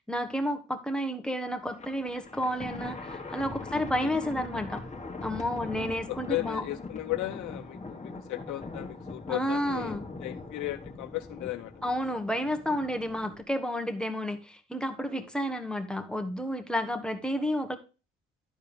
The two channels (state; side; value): normal; both; correlation 0.71